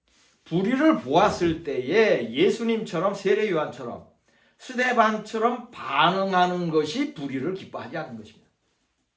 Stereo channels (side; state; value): both; identical; correlation 1.00